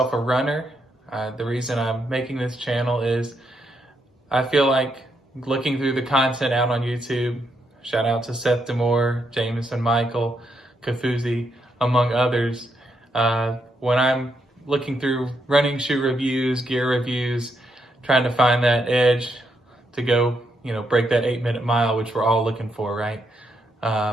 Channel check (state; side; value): normal; both; correlation 0.79